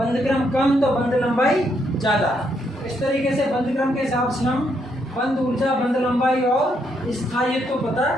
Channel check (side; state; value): both; normal; correlation 0.75